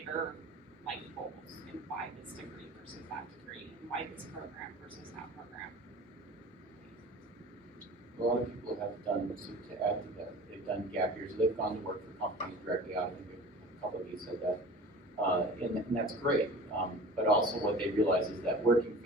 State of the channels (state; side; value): normal; both; correlation 0.40